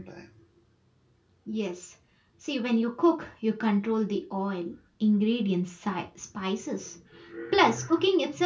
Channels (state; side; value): identical; both; correlation 1.00